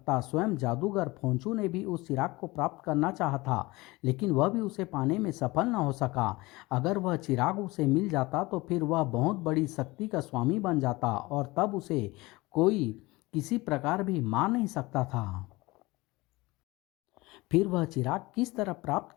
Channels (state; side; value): quieter; right; 21.8 dB